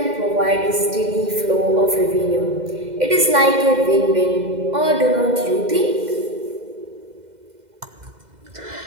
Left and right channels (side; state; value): left; late; 2.0 ms